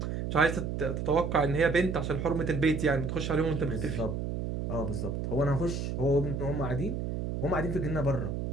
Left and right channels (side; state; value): right; noise; hum, 3 dB below the sound